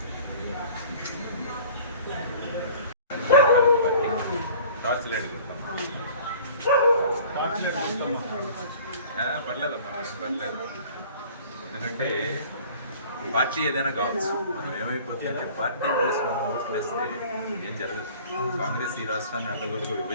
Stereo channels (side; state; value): both; inverted; correlation -0.47